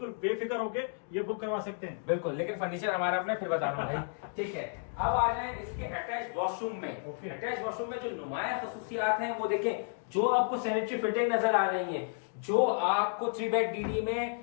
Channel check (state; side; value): silent; right; 56 dB below the other